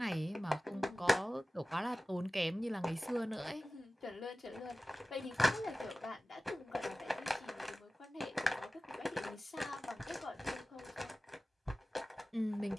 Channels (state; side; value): normal; both; correlation 0.97